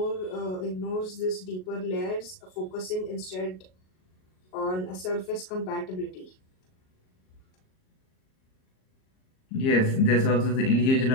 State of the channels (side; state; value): right; late; 38 ms